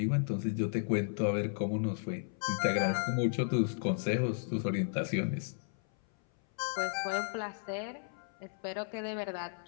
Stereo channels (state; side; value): silent; right; 55 dB below the other